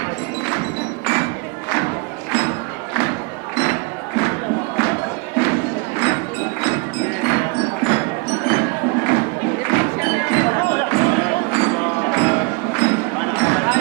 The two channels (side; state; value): left; quieter; 27.8 dB